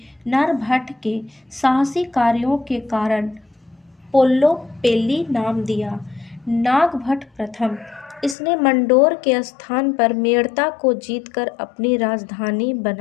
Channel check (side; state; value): right; drops out; at 8.3 s